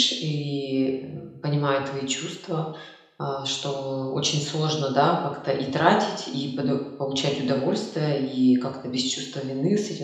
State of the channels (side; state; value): both; identical; correlation 1.00